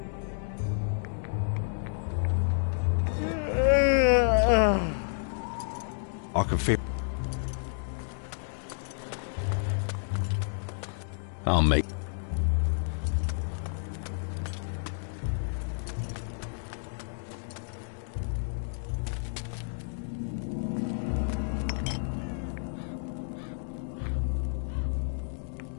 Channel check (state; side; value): silent; right; digital silence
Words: I can feel... I'll make...